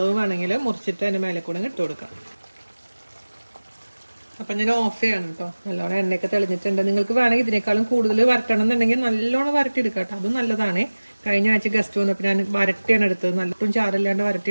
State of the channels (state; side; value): inverted; both; correlation -1.00